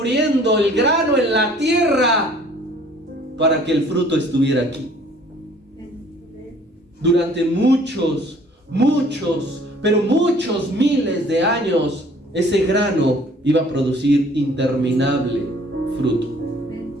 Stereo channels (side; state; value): both; normal; correlation 0.55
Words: el grano en la tierra para que el fruto estuviera aquí. Durante muchos miles de años, ese grano iba a producir interminable fruto.